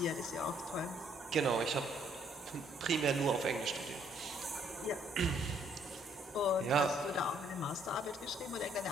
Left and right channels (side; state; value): both; normal; correlation 0.66